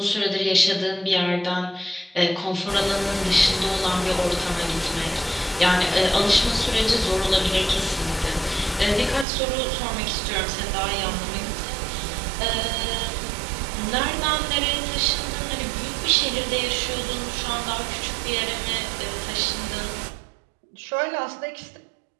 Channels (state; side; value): drops out; left; at 9.2 s